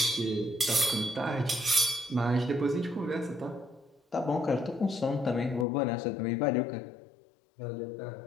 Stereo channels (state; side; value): drops out; right; at 5.7 s